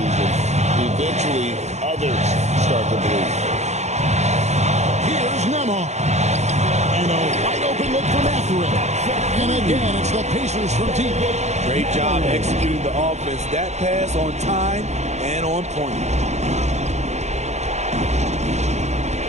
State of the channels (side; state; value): left; late; 0.33 ms